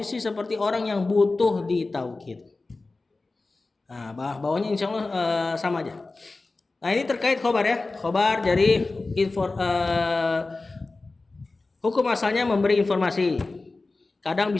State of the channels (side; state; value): right; quieter; 3.5 dB